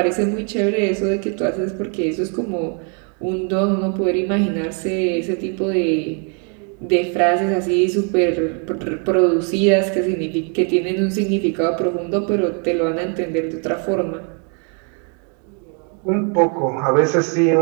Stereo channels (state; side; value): quieter; left; 39.7 dB